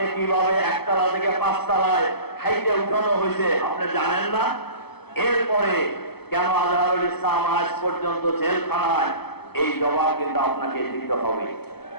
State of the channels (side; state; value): right; late; 0.97 ms